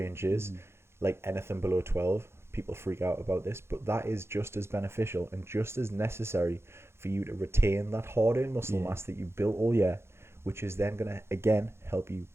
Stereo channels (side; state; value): left; late; 0.12 ms